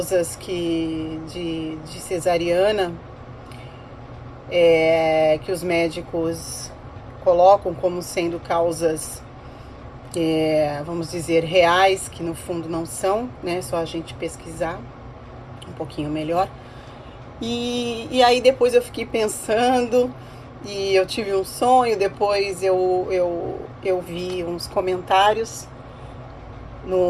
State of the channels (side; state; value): both; identical; correlation 1.00